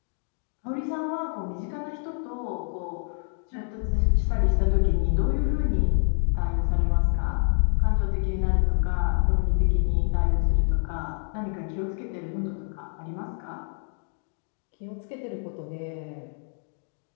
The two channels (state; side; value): silent; right; 60 dB below the other